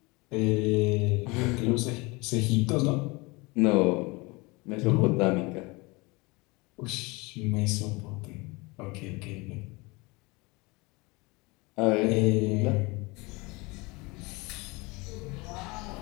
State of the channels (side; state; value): right; quieter; 25.5 dB